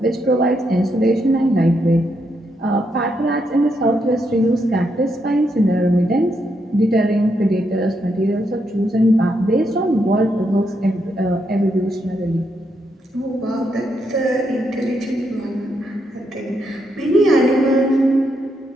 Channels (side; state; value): both; normal; correlation 0.79